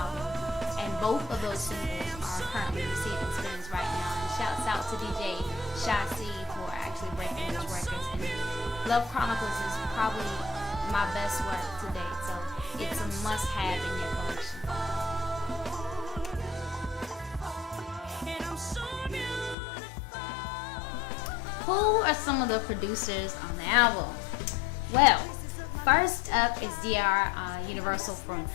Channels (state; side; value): drops out; right; at 19.6 s